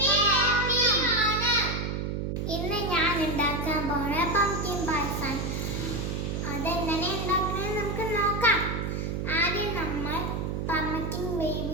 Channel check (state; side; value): noise; right; hum, 2 dB below the sound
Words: അതെങ്ങനെ ഉണ്ടാക്കുന്നത് നമുക്ക് നോക്കാം. ആദ്യം നമ്മൾ പംകിൻ